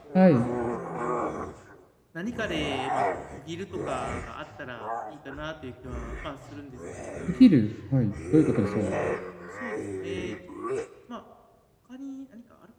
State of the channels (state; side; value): identical; both; correlation 1.00